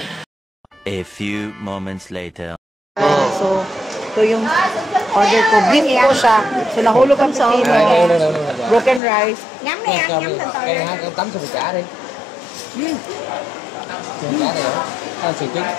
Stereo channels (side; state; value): right; drops out; at 9.0 s